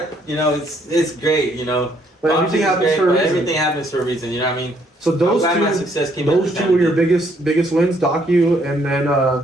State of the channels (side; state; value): both; normal; correlation 0.68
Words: you know, it's great, you know. But everything happens for a reason. Everything happens for a reason, you know what I mean? So those two were your biggest wins, Docu, and then